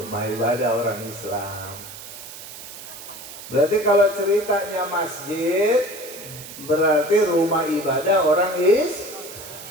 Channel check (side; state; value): right; noise; hiss, 14 dB below the sound